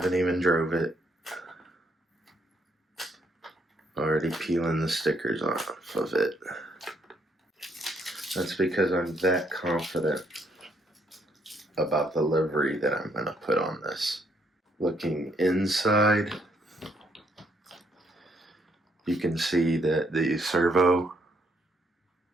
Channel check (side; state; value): both; normal; correlation 0.71